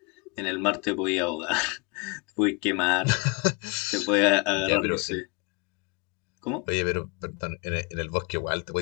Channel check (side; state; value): right; quieter; 30.2 dB